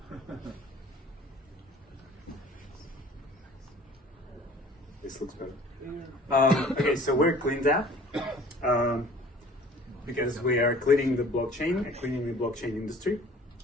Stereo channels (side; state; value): both; normal; correlation 0.49